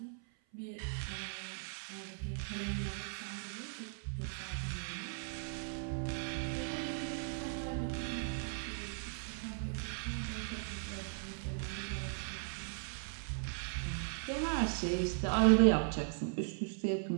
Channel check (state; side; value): silent; left; 52 dB below the other